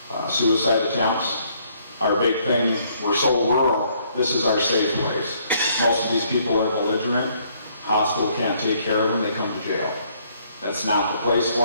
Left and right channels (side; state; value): both; inverted; correlation -0.66